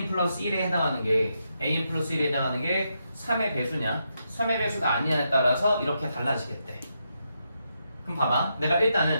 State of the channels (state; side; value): inverted; both; correlation -0.82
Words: 플러스 1에 해당하는 게 AN 플러스 1에 해당하는 게 3의 배수냐 3의 배수가 아니냐에 따라서 이렇게 달라지겠대. 그럼 봐봐 내가